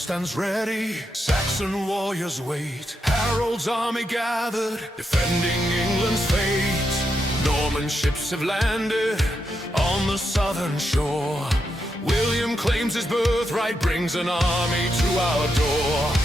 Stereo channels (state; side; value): normal; both; correlation 0.83